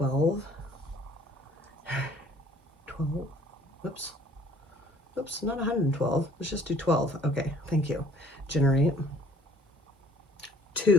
12. Whoops, not 112. Let's just do 12. Okay, thank you. Generate.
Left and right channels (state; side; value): normal; both; correlation 0.56